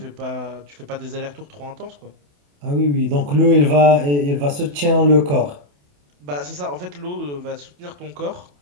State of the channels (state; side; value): late; left; 28 ms